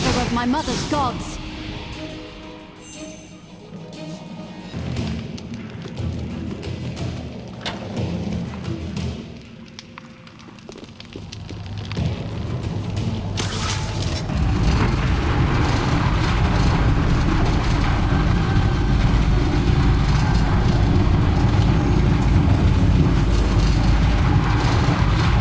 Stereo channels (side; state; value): both; identical; correlation 1.00